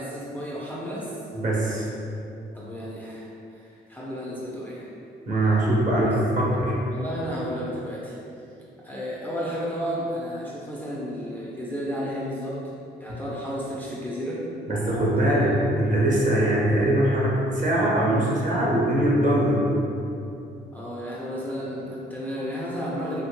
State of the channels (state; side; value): normal; both; correlation 0.61